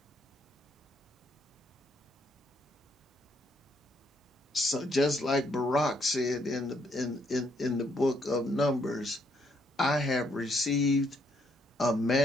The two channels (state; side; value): normal; both; correlation 0.72